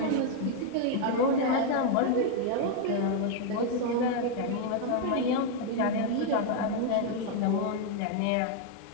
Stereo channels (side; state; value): both; different; correlation 0.00